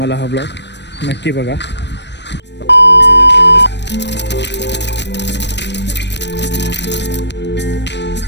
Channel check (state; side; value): late; right; 0.50 ms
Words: हा ब्लॉग, नक्की बघा.